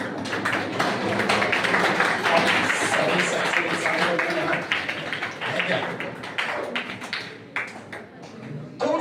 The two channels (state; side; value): identical; both; correlation 1.00